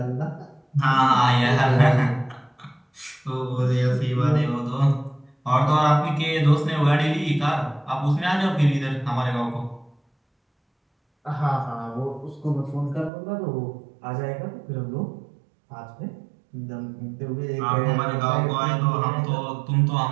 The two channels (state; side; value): drops out; left; at 13.1 s